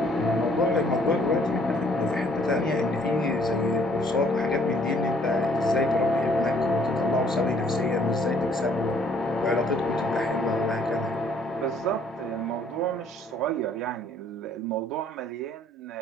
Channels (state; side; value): normal; both; correlation 0.62